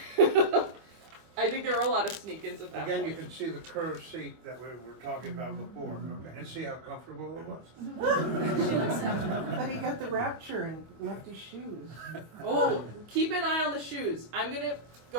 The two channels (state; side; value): late; left; 25 ms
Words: I think there were a lot of sneak-ins at that Again, point. you can see the curved seat that we were talking about before, okay, and see how comfortable it was. But he got the rapture and left his shoes. Oh, keep an eye on the shoes. I'm gonna